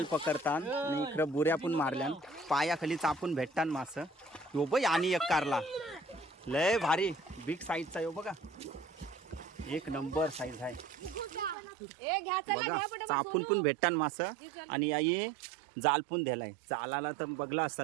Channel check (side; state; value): left; drops out; at 11.6 s